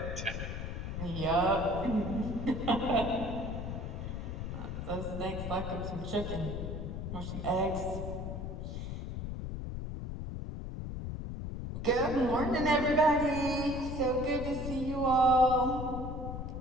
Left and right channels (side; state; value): left; noise; rumble, 5 dB below the sound